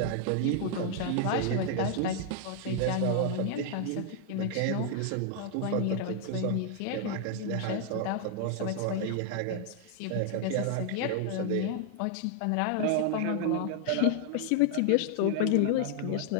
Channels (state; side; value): different; both; correlation 0.00